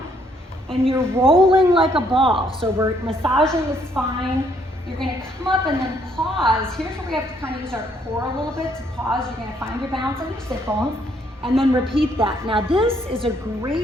and you're rolling like a ball. So we're massaging the spine. You're gonna come up and then pause. Here's where we have to kind of use our core a little bit to pause. You're gonna find your balance on your sit bones and then repeat that. Now this is a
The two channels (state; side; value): normal; both; correlation 0.68